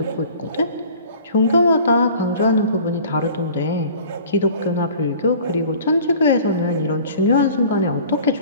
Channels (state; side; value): inverted; both; correlation -0.47